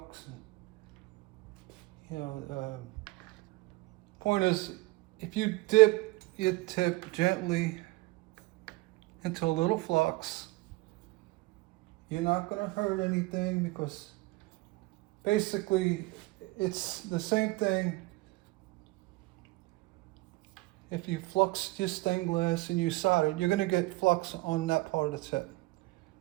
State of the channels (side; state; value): left; quieter; 21.4 dB